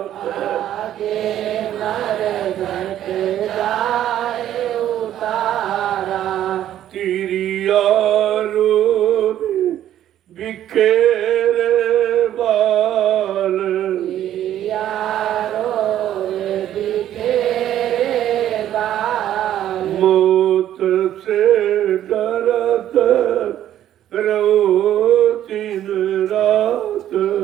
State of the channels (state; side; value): quieter; left; 11.6 dB